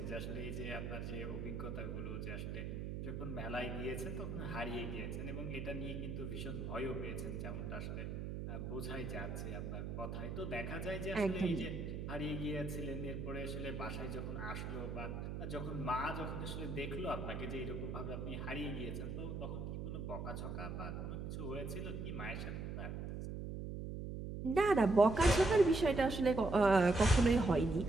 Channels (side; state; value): right; noise; hum, 5 dB below the sound